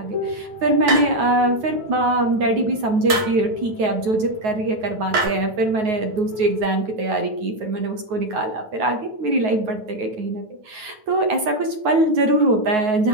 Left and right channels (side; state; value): left; late; 9.4 ms